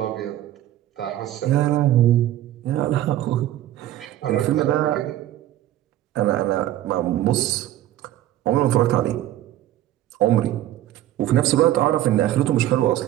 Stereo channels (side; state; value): left; quieter; 13.4 dB